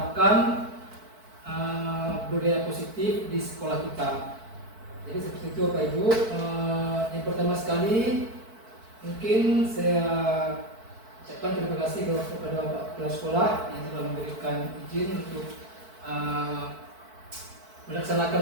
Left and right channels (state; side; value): late; left; 4.5 ms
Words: budaya positif di sekolah kita. Jadi seperti itu Bapak Ibu. Yang pertama sekali mungkin saya ucapkan terima kasih kepada Bapak Kepala Sekolah yang telah memberikan izin untuk